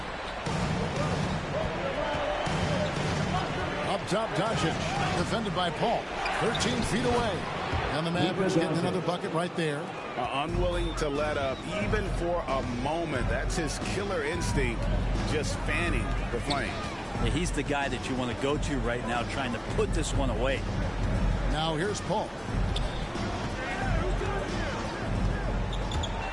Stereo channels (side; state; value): both; identical; correlation 1.00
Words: Up top, Doncic, defended by Paul. 13 feet away. And the Mavericks getting another bucket right there. Unwilling to let up even for a moment. That's his killer instinct, just fanning the flame. Yeah, he's the guy that you want to go to right now, trying to put this one away. Now here's Paul.